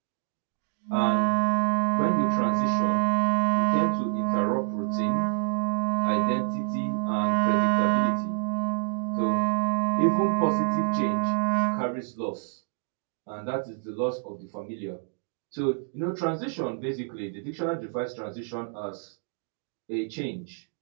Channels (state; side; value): silent; left; digital silence